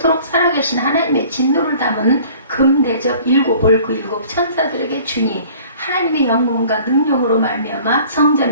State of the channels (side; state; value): both; inverted; correlation -0.50